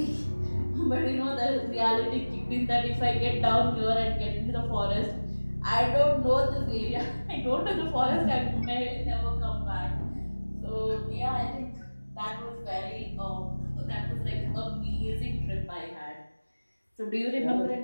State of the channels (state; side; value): inverted; both; correlation -1.00